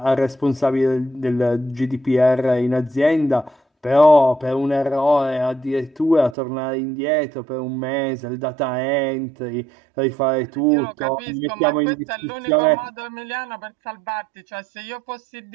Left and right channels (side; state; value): left; drops out; at 6.4 s